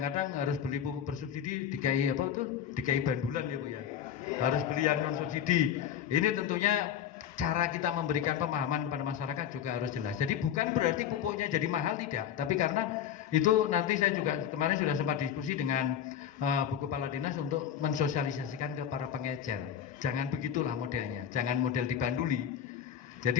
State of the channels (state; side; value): quieter; right; 9.3 dB